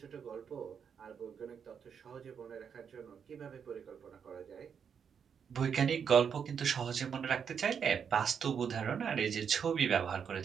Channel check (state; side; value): quieter; left; 7.1 dB